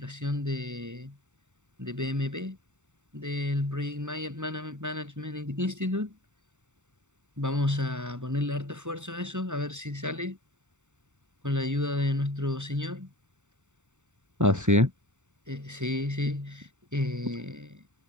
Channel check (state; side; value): late; left; 0.84 ms